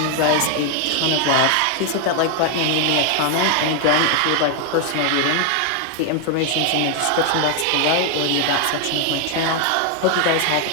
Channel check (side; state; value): both; different; correlation 0.01